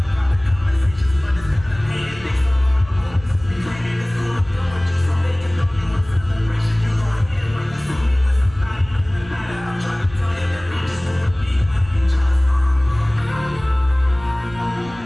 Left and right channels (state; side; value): noise; right; rumble, 20 dB below the sound